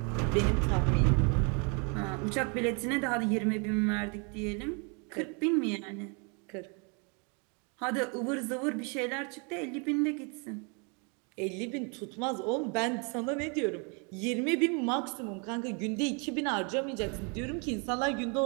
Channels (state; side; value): quieter; left; 34.9 dB